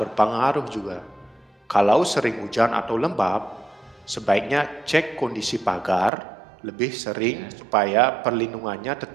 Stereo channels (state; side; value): drops out; left; at 6.1 s